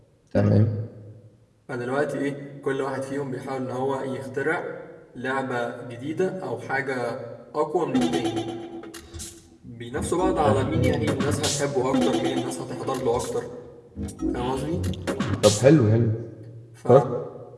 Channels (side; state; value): both; identical; correlation 1.00